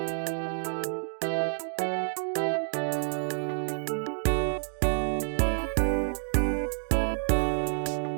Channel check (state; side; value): silent; left; digital silence